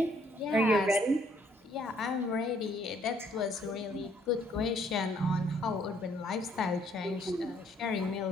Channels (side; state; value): both; normal; correlation 0.66